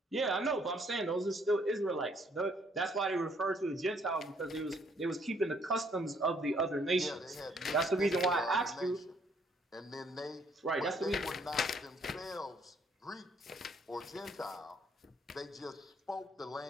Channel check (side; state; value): both; normal; correlation 0.66